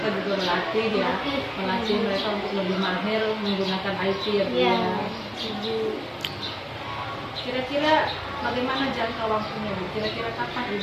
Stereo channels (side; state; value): both; identical; correlation 1.00